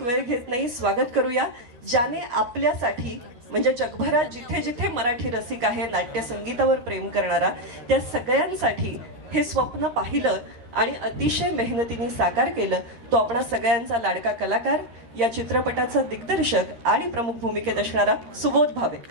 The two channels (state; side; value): late; left; 13 ms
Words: वेळ घेत नाही, स्वागत करूया ज्याने आपल्यासाठी म्हणजे जगभरात जिथे जिथे मराठी रसिक आहे नाट्य संगीतावर प्रेम करणारा त्या सगळ्यांसाठी हे स्वप्न पाहिलं आणि अतिशय मेहनतीने साकार केलं तो आपणा सगळ्यांचा लाडका कलाकार या चित्रपटाचा दिग्दर्शक आणि प्रमुख भूमिकेत असणारा सुबोध भावे।